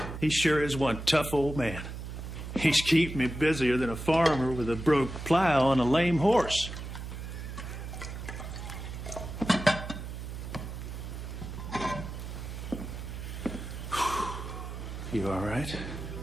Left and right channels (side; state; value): right; noise; hum, 8 dB below the sound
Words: he sure is one tough old man. He's keeping me busier than a farmer with a broke plow and a lame horse. You all right?